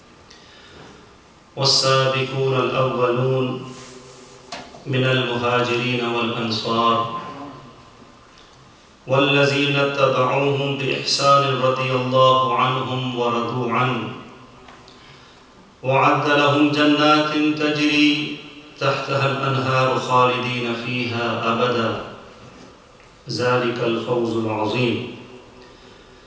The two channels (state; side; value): identical; both; correlation 1.00